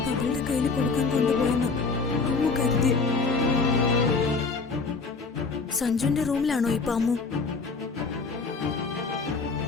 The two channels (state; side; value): quieter; right; 4.4 dB